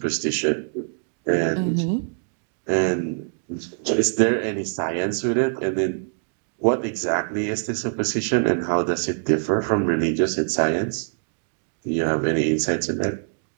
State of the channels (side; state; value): left; silent; digital silence